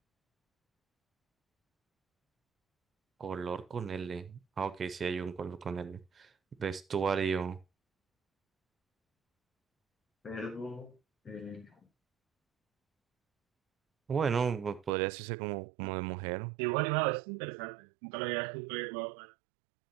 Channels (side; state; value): left; drops out; at 14.9 s